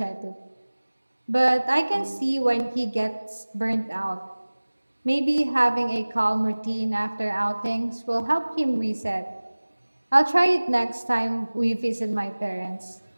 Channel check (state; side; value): inverted; both; correlation -1.00